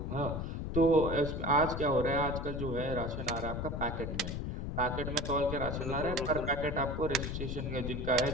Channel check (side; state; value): left; noise; rumble, 4 dB below the sound